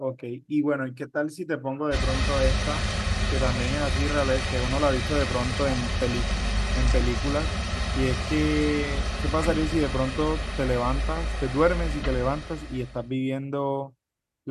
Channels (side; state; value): both; identical; correlation 1.00